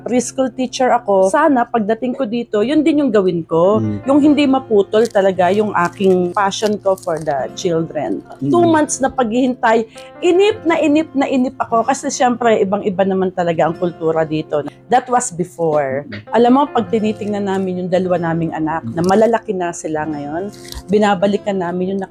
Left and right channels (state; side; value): identical; both; correlation 1.00